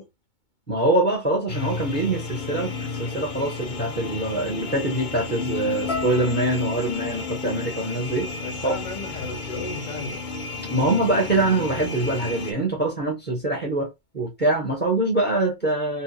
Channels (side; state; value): right; late; 2.2 ms